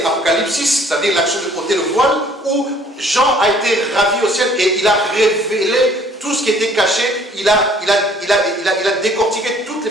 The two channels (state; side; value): normal; both; correlation 0.57